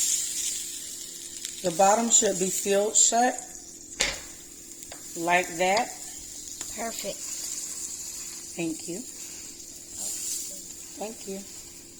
The bottom should be sealed shut. Like that. Perfect. Thank you. Thank you.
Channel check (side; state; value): both; identical; correlation 1.00